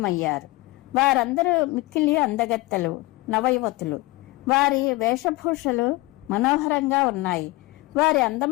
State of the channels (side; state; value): right; quieter; 21.2 dB